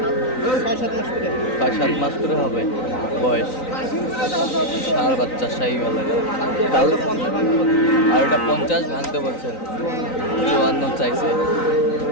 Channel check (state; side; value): late; right; 3.9 ms